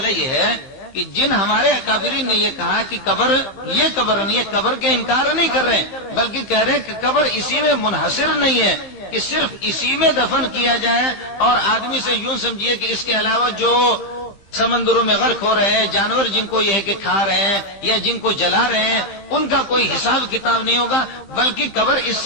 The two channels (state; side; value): late; right; 15 ms